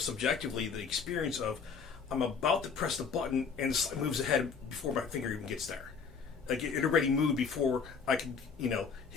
the experience of, I'm about to press the button and the slide moves ahead before my finger even gets there. Like it already moved before I could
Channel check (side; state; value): right; quieter; 5.9 dB